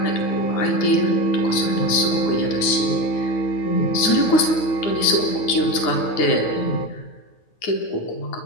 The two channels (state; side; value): late; right; 9.5 ms